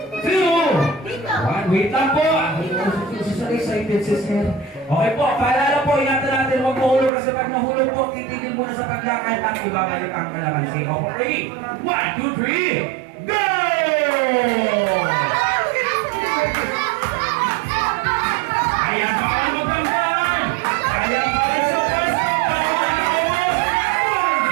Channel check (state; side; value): drops out; left; at 7.1 s